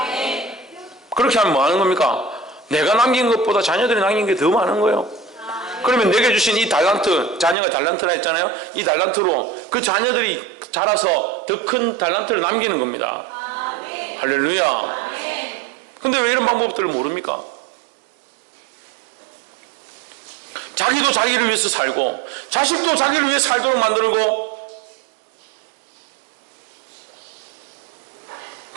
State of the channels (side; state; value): left; drops out; at 7.6 s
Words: 그렇게 하면 뭐 하는 겁니까? 내가 남긴 것보다 자녀들이 남긴 게 더 많은 거예요. 그러면 내게 주신 이 달란트, 자녀가 달란트라 했잖아요. 이 달란트로 그 자녀들이 자라서 더 큰 달란트를 남기는 겁니다. 할렐루야. 근데 왜 이런 방법들을 모릅니까? 자기도 자기를 위해서 살고 자식도 자기를 위해 살도록 만들고